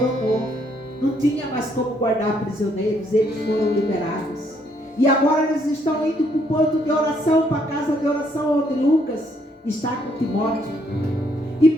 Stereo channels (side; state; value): both; normal; correlation 0.70